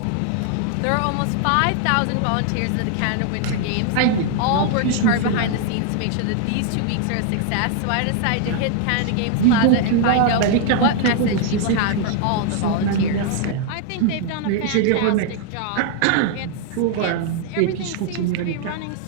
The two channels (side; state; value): both; different; correlation 0.00